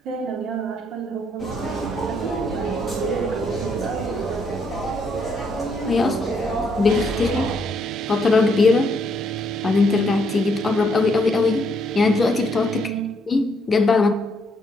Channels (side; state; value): both; normal; correlation 0.72